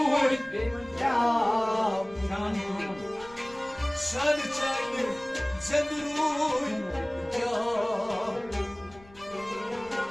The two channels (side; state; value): left; noise; rumble, 23 dB below the sound